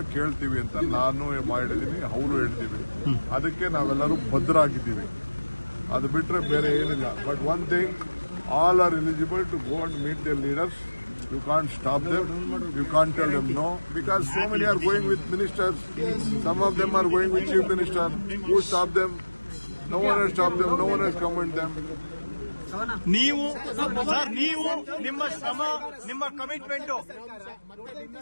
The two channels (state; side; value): inverted; both; correlation -1.00